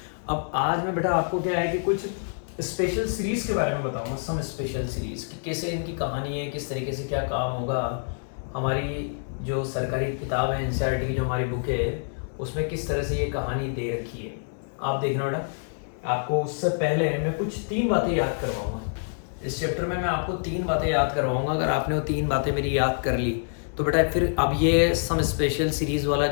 अब आज मैं बेटा आपको क्या है कि कुछ स्पेशल सीरीज के बारे में बताऊंगा। सम स्पेशल सीरीज कि कैसे इनकी कहानी है, किस तरीके से क्या काम होगा। हमारी जो सरकारी किताब है NCERT की, जो हमारी बुक है, उसमें किस तरह से ये कहानी दे रखी है। आप देखना बेटा, आपको उससे पहले मैं कुछ 3 बातें याद करवाऊंगा। इस चैप्टर में मैं आपको 3 बातें याद करवाऊंगा। अगर आपने वो 3 बातें मेरी याद कर ली तो बेटा फिर अब ये सम स्पेशल सीरीज वाला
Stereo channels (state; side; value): silent; right; digital silence